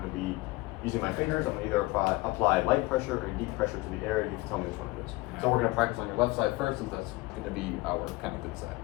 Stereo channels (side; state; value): right; quieter; 22.1 dB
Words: to be using my fingers. I'm going to either apply light pressure or deep pressure to the area. You can tell me which one it is. So we're going to practice on your left side first, since that's going to be our kind of good side.